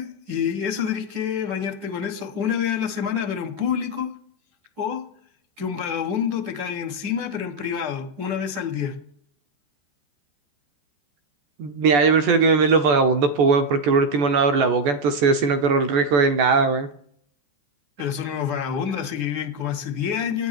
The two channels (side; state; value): left; late; 14 ms